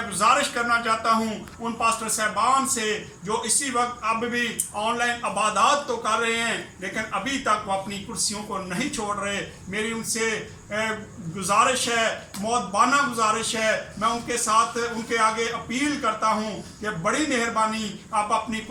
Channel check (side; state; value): both; identical; correlation 1.00